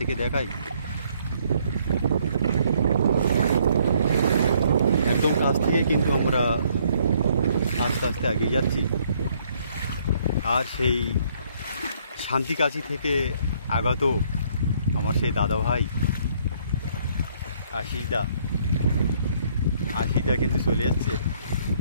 দেখাই। একদম কাছ থেকে কিন্তু আমরা আস্তে আস্তে এগিয়ে যাচ্ছি। আর সেই শান্তিকাছি থেকে আগত আমার সেই দাদা ভাই আশিসদা কিন্তু চলে যাচ্ছে।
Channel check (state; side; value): inverted; both; correlation -0.66